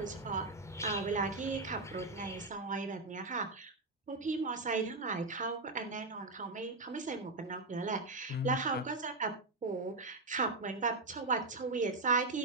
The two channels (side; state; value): left; quieter; 3.3 dB